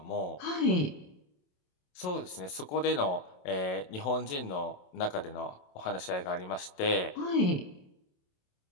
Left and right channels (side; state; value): right; late; 27 ms